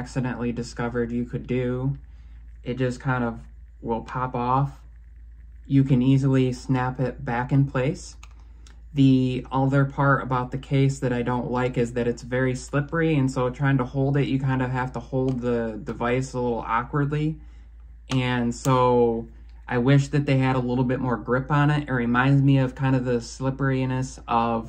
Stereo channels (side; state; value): both; identical; correlation 1.00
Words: discovered you could do, it just kind of will pop off. You can easily snap it back in place. The other part about the case that I don't like is that it's very slippery, and so trying to hold it, you kind of have to hold the device a little awkwardly. And so I wish that they had a little bit more grip on it. It reminds me of kind of the slipperiness